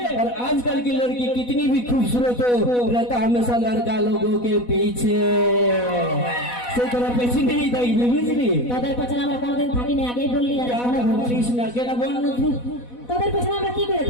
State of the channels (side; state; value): right; late; 4.1 ms